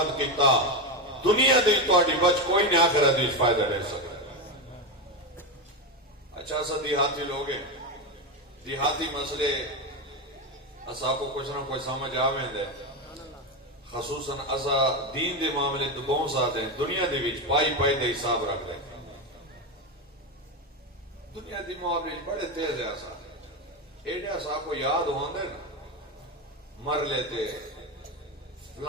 کیتا، دنیا دے تواڈی بچ کوئی نہیں، آخرت وچ فائدہ لے سکتا۔ اچھا سا دیہاتی لوگ ہیں، دیہاتی مسئلے اسا کو کچھ نہ کوئی سمجھ آویں دے، خصوصاً اسا دین دے معاملے تو بہت ساتھ ہیں، دنیا دے وچ پائی دے حساب رکھ لیں، دنیا دی معاملے بڑے تیز ہے اسا، ایڈے اسا کو یاد ہوندے نا، مر لیتے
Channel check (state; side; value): normal; both; correlation 0.12